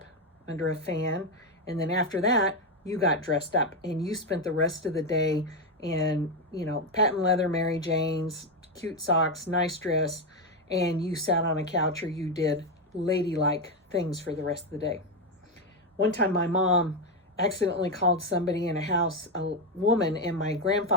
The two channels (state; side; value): normal; both; correlation 0.07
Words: under a fan. And then after that, you got dressed up and you spent the rest of the day in, patent leather Mary Janes, cute socks, nice dress, and you sat on a couch or you did ladylike things for the rest of the day. One time my mom accidentally called somebody in a house a woman, and my